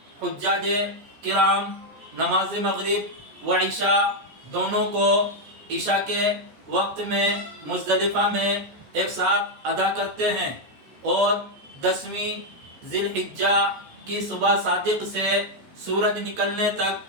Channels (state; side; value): late; left; 14 ms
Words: حجاج کرام نماز مغرب و عشاء دونوں کو عشاء کے وقت میں مزدلفہ میں ایک ساتھ ادا کرتے ہیں، اور 10ویں ذی الحجہ کی صبح صادق سے سورج نکلنے